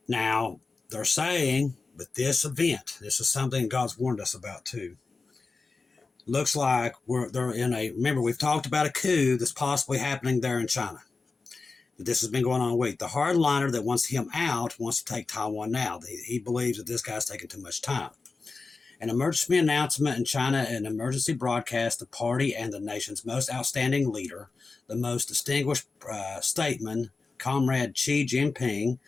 Now, they're saying with this event, this is something God's warned us about too. Looks like they're in a, remember we've talked about a coup that's possibly happening there in China. This has been going on a week. The hardliner that wants him out wants to take Taiwan now. He believes that this guy's taking too much time. An emergency announcement in China, an emergency broadcast, the party and the nation's most outstanding leader, the most distinguished statesman, Comrade Xi Jinping,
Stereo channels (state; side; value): quieter; right; 4.1 dB